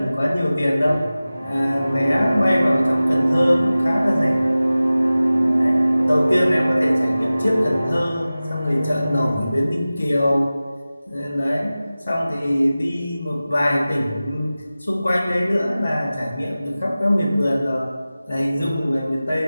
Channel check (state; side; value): inverted; both; correlation -0.96